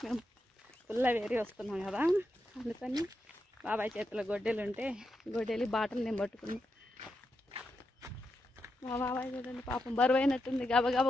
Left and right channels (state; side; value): normal; both; correlation 0.86